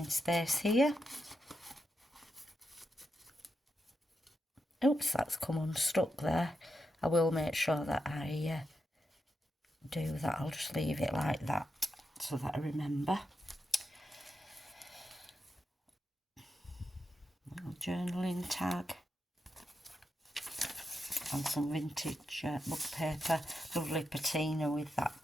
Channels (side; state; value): both; normal; correlation 0.86